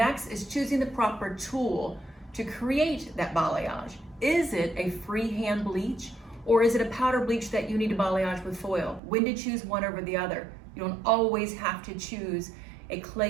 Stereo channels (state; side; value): drops out; left; at 9.0 s